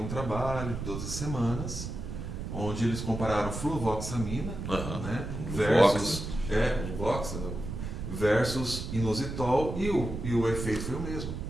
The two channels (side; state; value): right; noise; rumble, 6 dB below the sound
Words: um trabalho de 12 semanas, onde eles compararam fluvoxamina, né, versus inositol, e o efeito foi o mesmo.